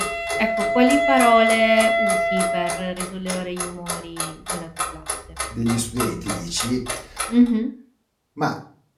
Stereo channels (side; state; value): both; identical; correlation 1.00